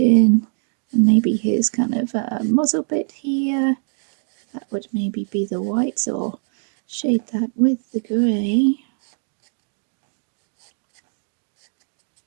and maybe his kind of muzzle bit here. That would maybe be the whites, or shade that with the grey.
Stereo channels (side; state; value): left; silent; 64 dB below the other